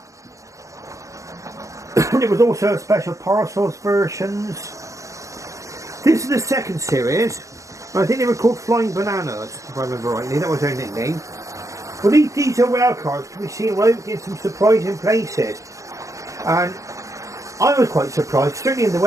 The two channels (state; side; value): late; left; 0.15 ms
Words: There was also special parcels versions. This is the second series. I think they were called Flying Bananas, if I remember rightly. That was their nickname. Well, these diesel rail cars can be seen right in some surprising places. And I was quite surprised, certainly in the